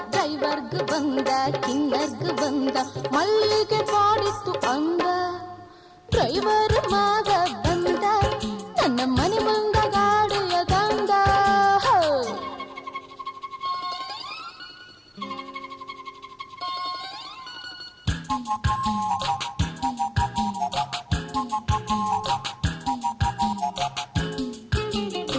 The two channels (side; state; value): both; identical; correlation 1.00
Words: ಡ್ರೈವರ್ಗ್ ಬಂದ, ಕಿನ್ನರ್ಗ್ ಬಂದ, ಮಲ್ಲಿಗೆ ಕಾಡಿತ್ತು ಅಂದ. ಡ್ರೈವರ್ ಮಾವ ಬಂದ, ನನ್ನ ಮನೆ ಮುಂದ ಗಾಡಿಯ ತಂದ.